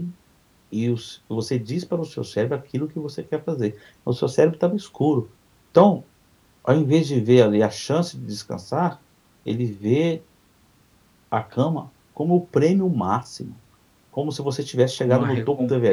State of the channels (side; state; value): both; identical; correlation 1.00